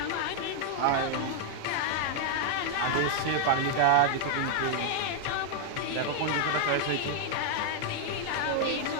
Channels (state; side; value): different; both; correlation 0.00